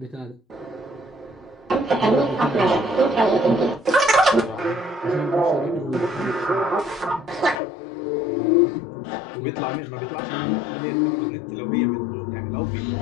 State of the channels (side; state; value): right; drops out; at 7.6 s